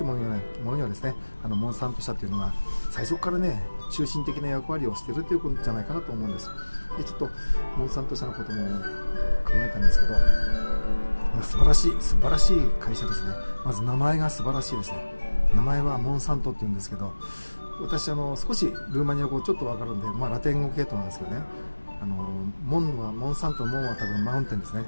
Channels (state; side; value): inverted; both; correlation -1.00